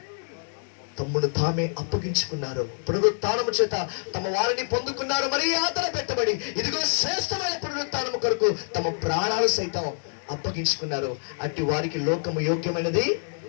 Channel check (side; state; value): right; silent; digital silence